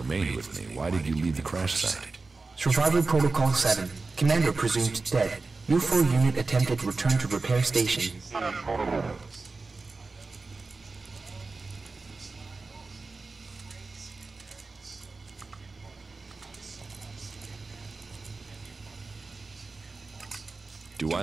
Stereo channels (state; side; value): quieter; left; 3.9 dB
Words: with me. Why did you leave the crash site? Survival Protocol 7. Commander presumed dead. U4 unit attempted return to repair station. Do I